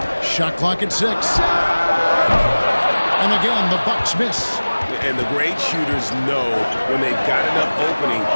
Shot clock at 6. And again, the Bucks miss. And the great shooters know when they've got enough opening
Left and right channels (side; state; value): both; inverted; correlation -1.00